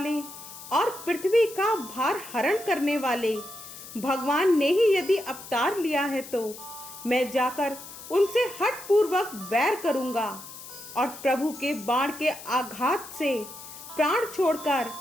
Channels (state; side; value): noise; left; hiss, 14 dB below the sound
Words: और पृथ्वी का भार हरण करने वाले भगवान ने ही यदि अवतार लिया है, तो मैं जाकर उनसे हठ पूर्वक वैर करूंगा। और प्रभु के बाण के आघात से प्राण छोड़कर